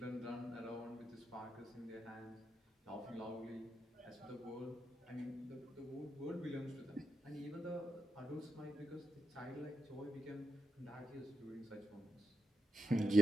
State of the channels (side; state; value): both; normal; correlation 0.84